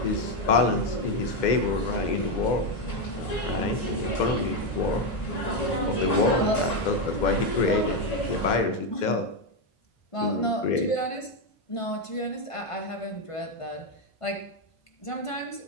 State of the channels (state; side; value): late; right; 1.5 ms